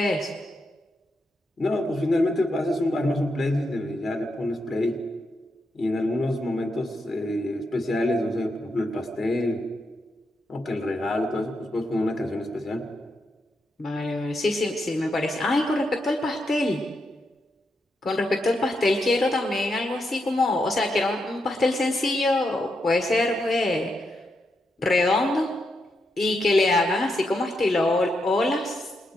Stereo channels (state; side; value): normal; both; correlation 0.83